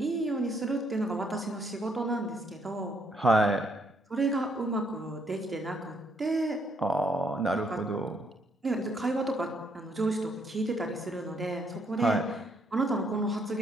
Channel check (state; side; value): normal; both; correlation 0.71